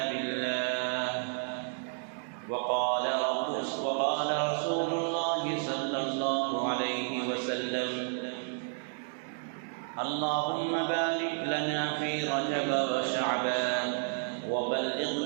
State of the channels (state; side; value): silent; left; digital silence